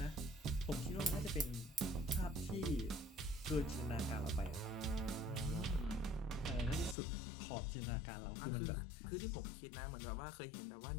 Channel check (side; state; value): right; drops out; at 7.0 s